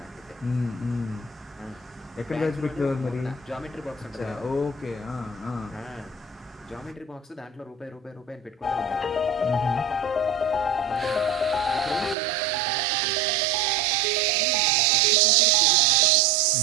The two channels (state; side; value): drops out; left; at 12.2 s